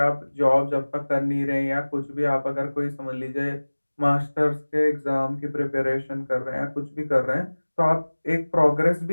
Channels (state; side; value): inverted; both; correlation -1.00